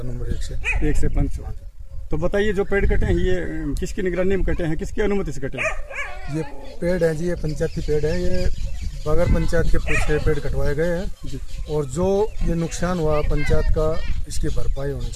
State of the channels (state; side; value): identical; both; correlation 1.00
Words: नंबर 1 से 500। तो बताइए, जो पेड़ कटे हैं ये किसकी निगरानी में कटे हैं, किसकी अनुमति से कटे हैं? ये पेड़ है जी, ये पंचायती पेड़ है, ये बगैर पंचायत के कुछ पेड़ कटवाए गए हैं, और जो ये नुकसान हुआ पंचायत का, इसकी भरपाई होनी